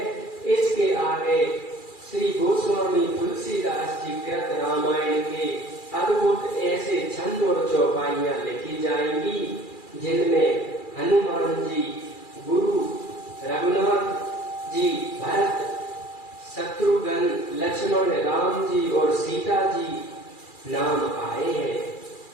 इसके आगे श्री गोस्वामी तुलसीदास जी कृत रामायण के अद्भुत ऐसे छंद और चौपाइयां लिखी जाएंगी, जिनमें हनुमान जी, गुरु रघुनाथ जी, भरत, शत्रुघ्न, लक्ष्मण, राम जी और सीता जी नाम आए हैं।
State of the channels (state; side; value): late; right; 2.4 ms